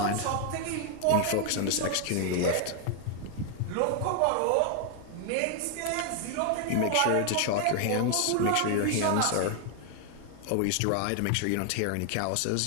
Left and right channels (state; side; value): different; both; correlation 0.00